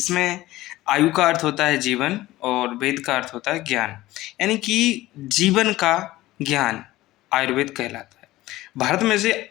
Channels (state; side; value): quieter; right; 17.1 dB